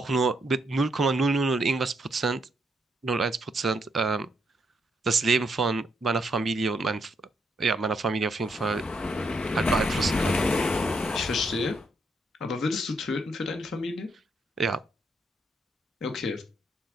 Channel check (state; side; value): normal; both; correlation 0.76